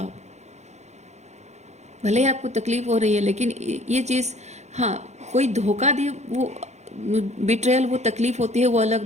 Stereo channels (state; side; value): late; left; 0.33 ms